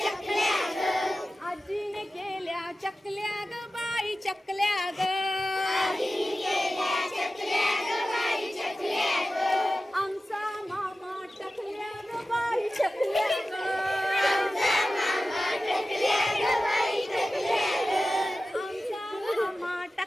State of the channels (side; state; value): both; normal; correlation 0.95